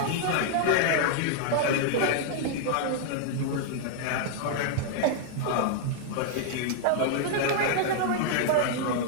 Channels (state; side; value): different; both; correlation 0.00